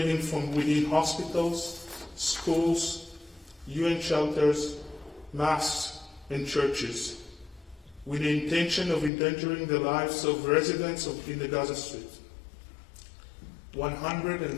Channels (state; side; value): drops out; right; at 9.1 s